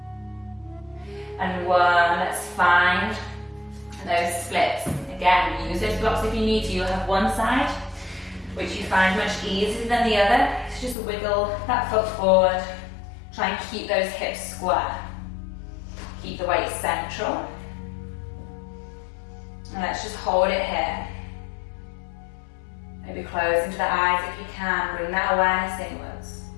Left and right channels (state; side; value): drops out; right; at 11.0 s